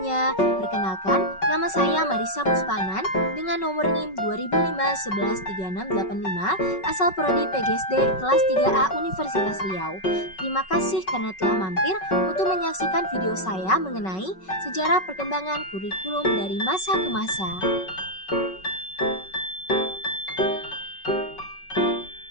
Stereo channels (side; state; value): right; late; 5.3 ms